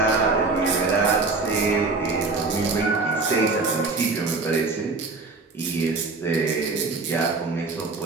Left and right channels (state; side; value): quieter; left; 3.8 dB